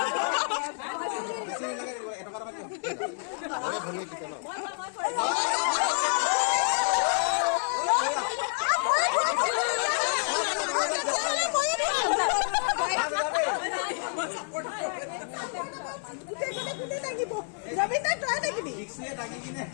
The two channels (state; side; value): silent; right; 59 dB below the other